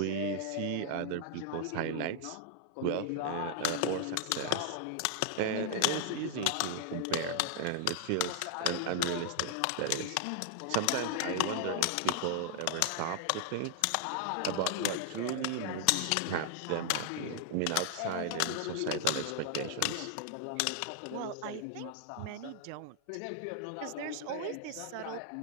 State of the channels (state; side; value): different; both; correlation 0.00